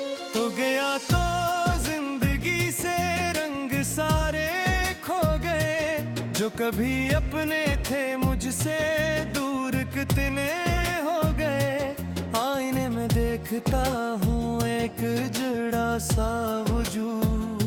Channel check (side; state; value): both; identical; correlation 1.00